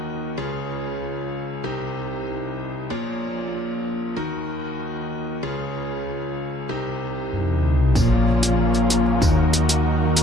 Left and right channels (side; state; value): both; normal; correlation 0.60